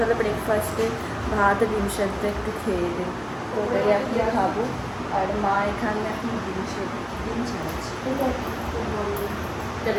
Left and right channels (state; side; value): identical; both; correlation 1.00